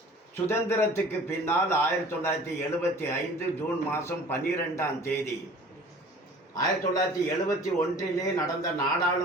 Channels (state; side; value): normal; both; correlation 0.46